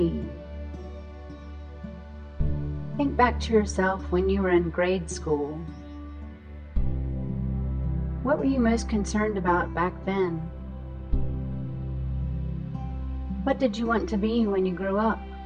Think back to yourself when you were in grade school. What were you most concerned about back then? What did you want to be when you grew up?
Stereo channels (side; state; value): both; identical; correlation 1.00